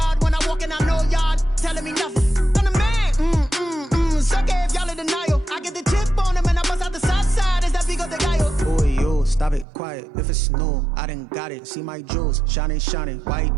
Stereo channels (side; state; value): left; drops out; at 9.7 s